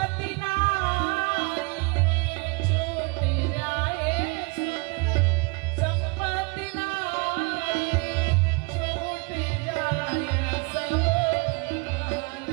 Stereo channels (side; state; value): left; quieter; 29.3 dB